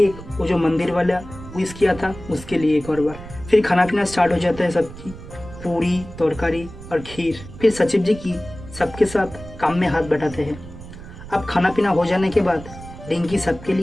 वो जो मंदिर वाला विश किया था उसके लिए एक और बार। फिर खाना पीना स्टार्ट हो जाता है सबकी, पूरी तरकारी और खीर। फिर सचिव जी की सबके साथ काम में हाथ बटाते हैं। अब खाना पीना हो जाने के बाद रिंकी सबके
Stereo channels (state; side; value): noise; right; rumble, 15 dB below the sound